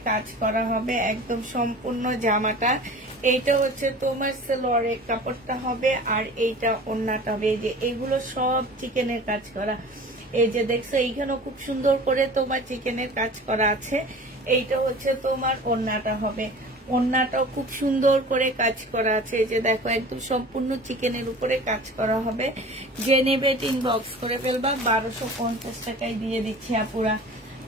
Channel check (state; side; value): normal; both; correlation 0.40